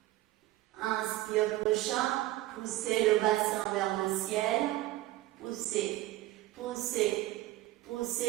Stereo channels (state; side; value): quieter; left; 16.4 dB